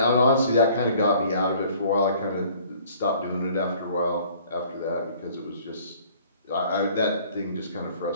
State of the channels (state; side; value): inverted; both; correlation -0.55